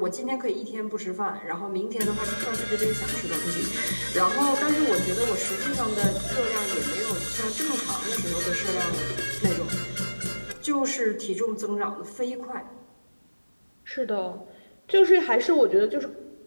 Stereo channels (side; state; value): both; inverted; correlation -1.00